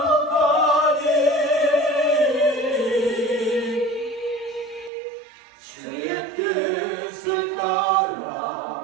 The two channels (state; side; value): drops out; left; at 4.9 s